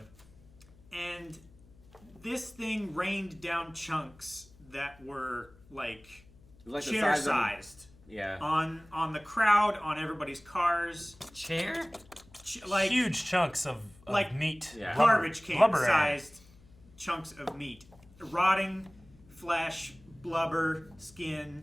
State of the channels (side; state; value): left; noise; hum, 26 dB below the sound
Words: And this thing rained down chunks that were like the chair size sized. Yeah. On the crowd, on everybody's cars. Chair? Like huge chunks of like meat. Yeah. Garbage can sized chunks of meat. Rotting flesh, blubber, skin.